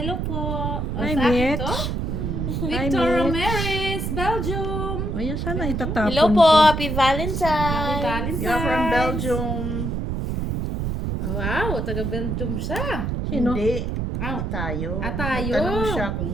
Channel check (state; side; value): noise; right; rumble, 2 dB below the sound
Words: po. Hi, sa akin Mitch. to? Hi, Victor Mitch. Ramirez, Belgium. O yan, sana itatapon Hello po. ko. Happy Valentine's. Valentine's. You're from Belgium. Wow, taga Belgium siya. Sino? Hindi. Wow. Tayo. Tayo. Tanong siya kung